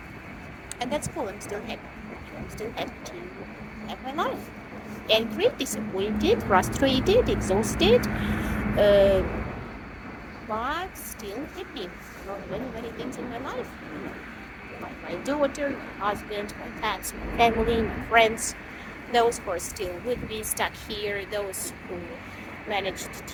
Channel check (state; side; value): identical; both; correlation 1.00